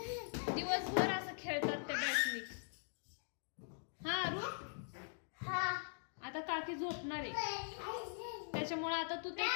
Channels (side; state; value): right; silent; digital silence